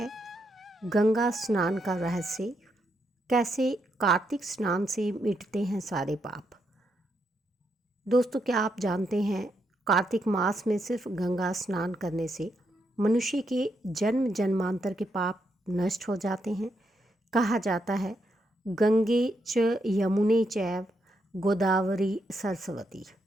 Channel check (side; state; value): both; normal; correlation 0.80